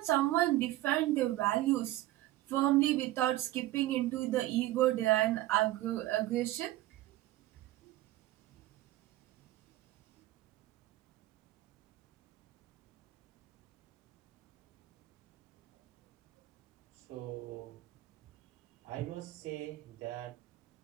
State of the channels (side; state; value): left; quieter; 16.2 dB